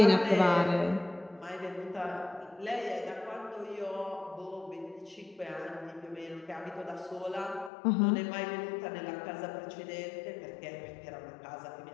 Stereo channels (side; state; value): right; drops out; at 7.7 s